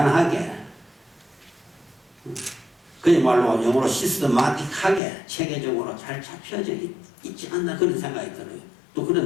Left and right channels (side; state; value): right; drops out; at 5.0 s